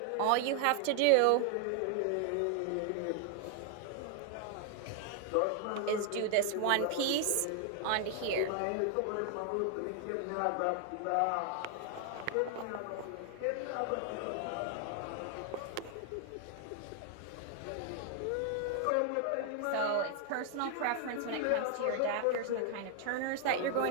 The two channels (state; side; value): different; both; correlation 0.00